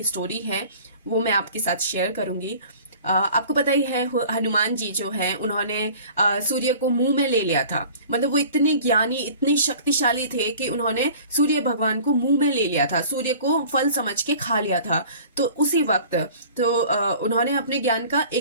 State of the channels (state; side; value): inverted; both; correlation -0.46